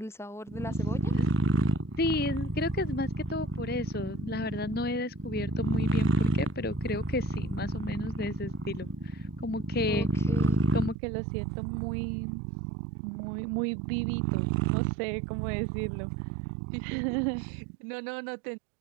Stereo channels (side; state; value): left; drops out; at 11.0 s